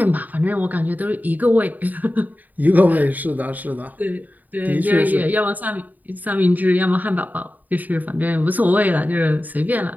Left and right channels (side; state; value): left; late; 0.082 ms